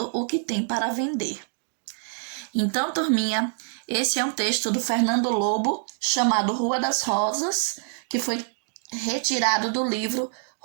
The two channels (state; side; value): silent; left; digital silence